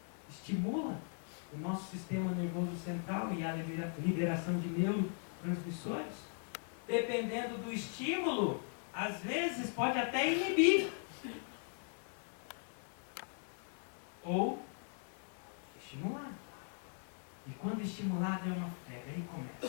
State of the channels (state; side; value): silent; right; 52 dB below the other